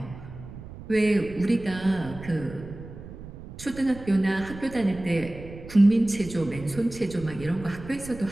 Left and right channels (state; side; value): noise; right; rumble, 14 dB below the sound